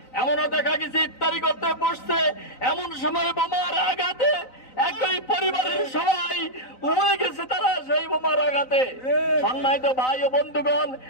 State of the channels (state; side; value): late; right; 3.9 ms